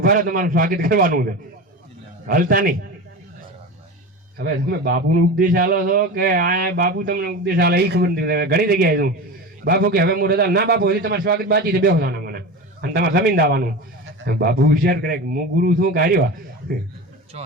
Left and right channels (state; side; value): normal; both; correlation 0.27